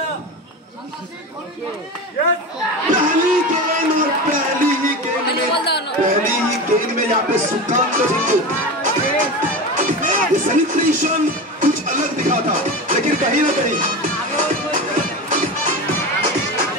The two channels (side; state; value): both; normal; correlation 0.26